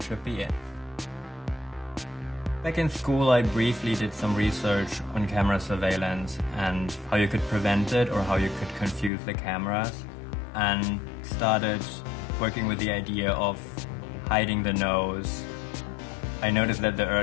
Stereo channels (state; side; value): drops out; right; at 9.1 s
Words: should be it. Back in school, I briefly did some research on camera surveillance and how you could prevent it or how you could confuse the cameras, and started working with the idea of hiding the nose. I noticed that the